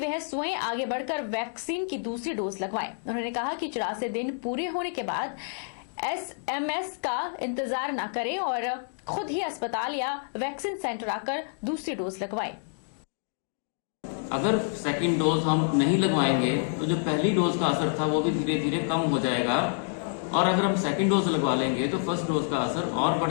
स्वयं आगे बढ़कर वैक्सीन की दूसरी डोज लगवाएं। उन्होंने कहा कि 84 दिन पूरे होने के बाद एसएमएस का इंतजार न करें और खुद ही अस्पताल या वैक्सीन सेंटर आकर दूसरी डोज लगवाएं। अगर सेकंड डोज हम नहीं लगवाएंगे तो जो पहली डोज का असर था वो भी धीरे धीरे कम हो जाएगा, और अगर हम सेकंड डोज लगवा लेंगे तो फर्स्ट डोज का असर और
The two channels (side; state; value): right; silent; digital silence